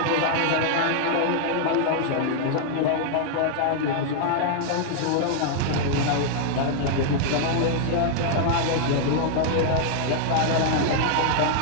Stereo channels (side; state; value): both; different; correlation -0.01